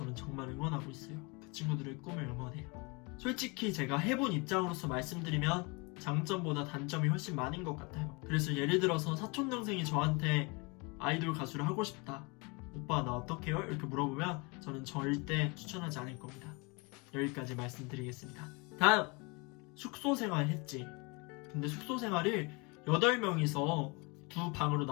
정말 응원하고 있어요. 그 친구들의 꿈을 응원해요. 솔직히 제가 해본 입장으로서 말씀드리면 장점보다 단점이 훨씬 많은 것 같아요. 그래서 예를 들어서 사촌동생이 저한테 아이돌 가수를 하고 싶다, 오빠 나 어떡해요? 이렇게 물어보면 저는 절대 추천하지 않을 겁니다. 여기까지 말씀드리겠습니다. 다음! 숙소 생활 했지. 근데 숙소 생활을 8명이서 두 방으로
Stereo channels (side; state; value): right; quieter; 29.1 dB